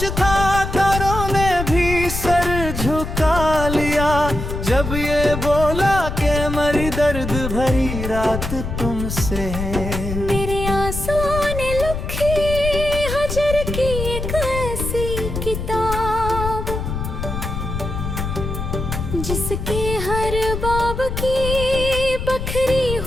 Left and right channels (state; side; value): noise; left; rumble, 4 dB below the sound